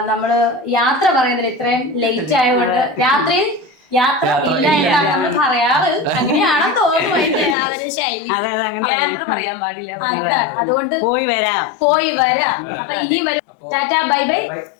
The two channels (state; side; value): drops out; right; at 7.6 s